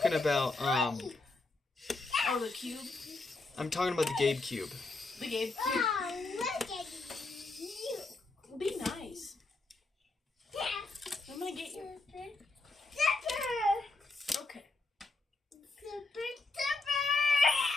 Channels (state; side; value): quieter; right; 3.4 dB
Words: about Oh, the cube? I'm talking about the Gabe Cube. The Gabe cube. Oh, look at you. Be nice. I'm gonna get you. Okay.